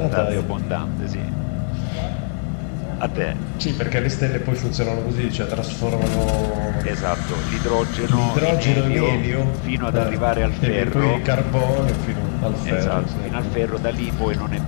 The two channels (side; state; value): right; silent; digital silence